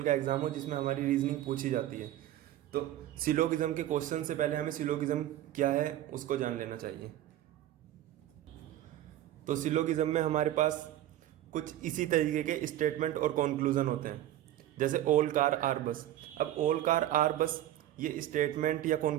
का एग्जाम हो जिसमें हमारी रीजनिंग पूछी जाती है। तो सिलोगिज्म के क्वेश्चन से पहले हमें सिलोगिज्म क्या है उसको जान लेना चाहिए। तो सिलोगिज्म में हमारे पास कुछ इसी तरीके के स्टेटमेंट और कंक्लूजन होते हैं, जैसे ऑल कार आर बस। अब ऑल कार आर बस ये स्टेटमेंट या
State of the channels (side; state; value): left; quieter; 13.2 dB